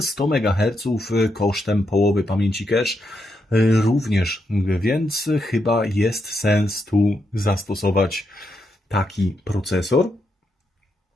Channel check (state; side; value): normal; both; correlation 0.82